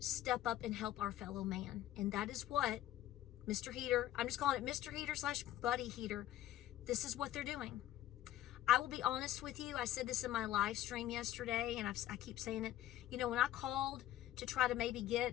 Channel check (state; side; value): quieter; right; 13.1 dB